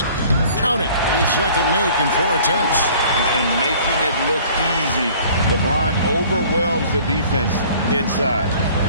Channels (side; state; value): both; inverted; correlation -0.51